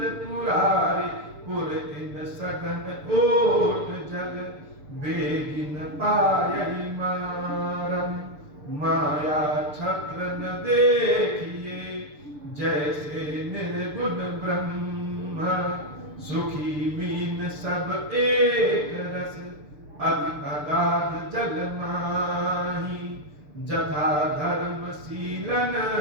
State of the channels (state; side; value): late; left; 6.8 ms